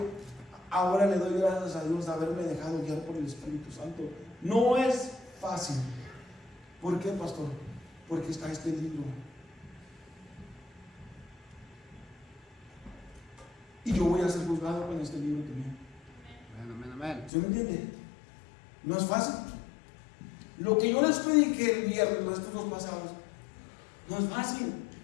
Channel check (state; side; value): drops out; right; at 17.3 s